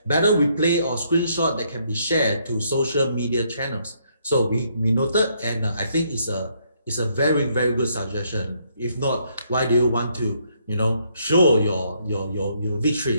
Battle replay or screenshot that can be shared to social media channels. So we noted, and I think it's a very, very good suggestion. If not, why do you want to, you know, show your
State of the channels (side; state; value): both; inverted; correlation -0.72